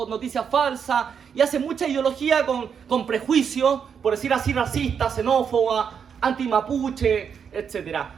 noticias falsas, y hace mucha ideología con prejuicios, por decir así, racista, xenófoba, anti-mapuche, etc.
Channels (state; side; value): quieter; left; 7.1 dB